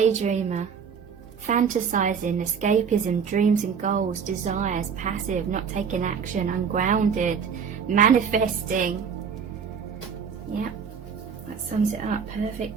Fantasizing, escapism, dreams and goals, desires, passive, not taking action, ungrounded, manifesting. Yep, that sums it up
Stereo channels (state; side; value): quieter; left; 6.6 dB